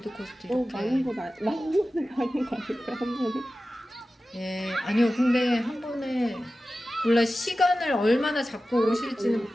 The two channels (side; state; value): both; normal; correlation 0.95